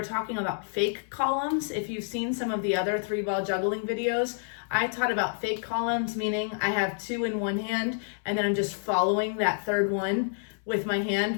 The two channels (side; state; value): right; silent; 59 dB below the other